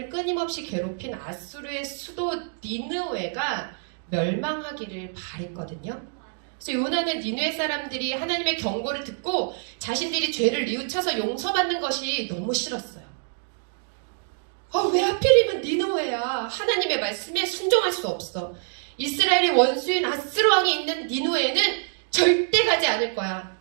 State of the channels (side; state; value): left; silent; 61 dB below the other